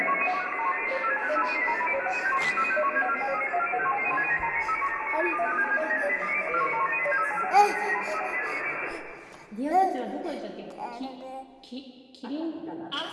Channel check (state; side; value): identical; both; correlation 1.00